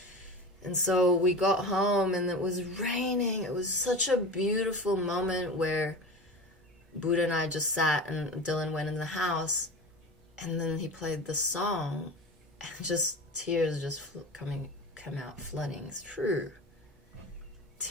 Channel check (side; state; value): both; normal; correlation 0.30